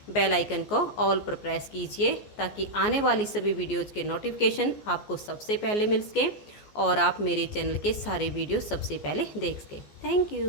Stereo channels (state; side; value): late; right; 14 ms